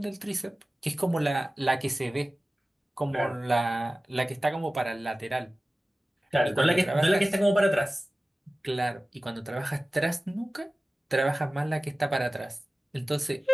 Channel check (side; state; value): both; normal; correlation 0.97